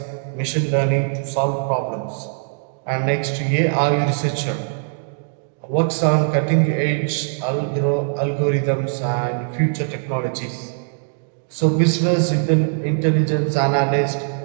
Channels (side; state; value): left; silent; digital silence